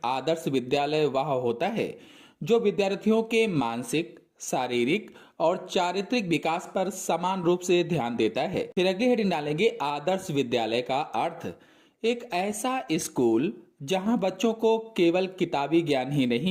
आदर्श विद्यालय वह होता है जो विद्यार्थियों के मानसिक, शारीरिक और चारित्रिक विकास पर समान रूप से ध्यान देता है। फिर अगली हेडिंग डालेंगे, आदर्श विद्यालय का अर्थ। एक ऐसा स्कूल जहां बच्चों को केवल किताबी ज्ञान ही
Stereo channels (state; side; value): identical; both; correlation 1.00